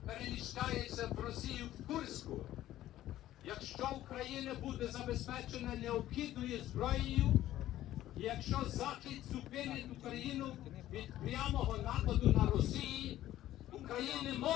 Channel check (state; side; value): quieter; right; 13.7 dB